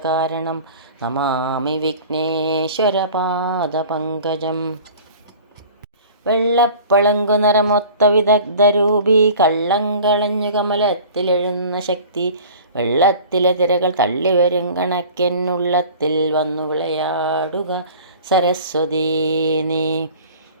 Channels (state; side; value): inverted; both; correlation -0.44